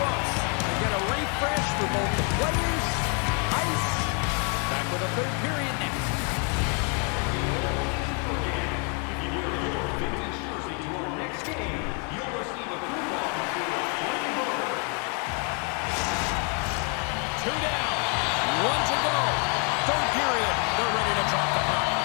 We get a refresh for both the players, ice. Back with a third period next. Two down, one to go. Third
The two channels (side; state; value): right; quieter; 37.4 dB